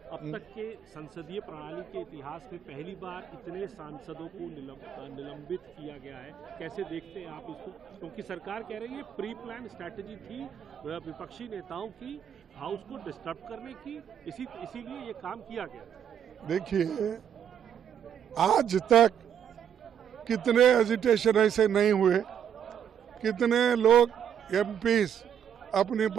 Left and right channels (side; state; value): left; quieter; 9.0 dB